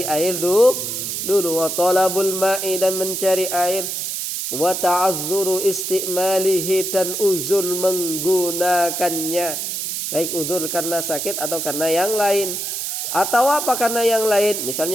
air dulu. Wa talabul ma'i, dan mencari air. Wa ta'azzuru istimalihi, dan uzur menggunakannya. Baik uzur karena sakit atau karena yang lain. Atau apa karena yang lain?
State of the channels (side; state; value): right; noise; hiss, 3 dB below the sound